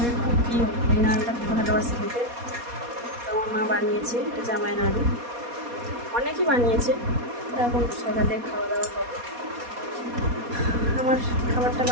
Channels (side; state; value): left; late; 4.2 ms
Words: খুব প্রিয়, এই নাড়ুটা খুব ভালোবাসে খেতে। তো আমার মা বানিয়েছে এটা জামাই নাড়ু, অনেকই বানিয়েছে। এখন সকালে খাওয়া দাওয়া করবো। আমার খাবারটা